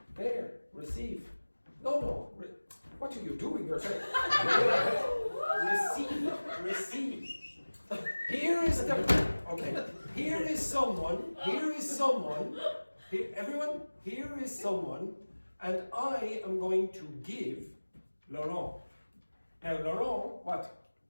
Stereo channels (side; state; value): both; inverted; correlation -1.00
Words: There. Receive. No. What are you doing yourself? Receive. Here is the... Okay. Here is someone. Everyone, here is someone, and I am going to give Laurent. Now Laurent, what?